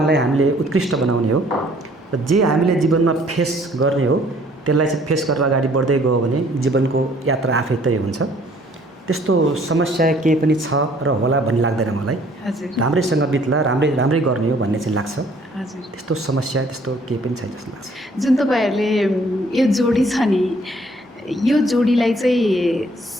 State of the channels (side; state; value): both; normal; correlation 0.60